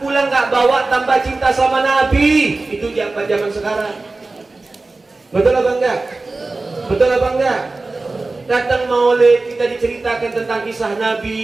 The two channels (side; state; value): left; quieter; 3.4 dB